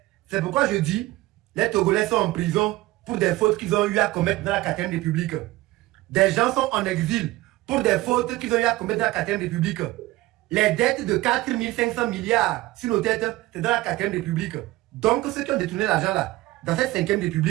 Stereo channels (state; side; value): quieter; left; 18.4 dB